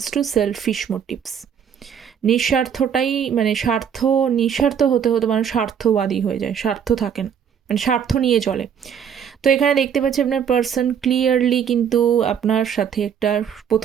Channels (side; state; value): left; quieter; 8.0 dB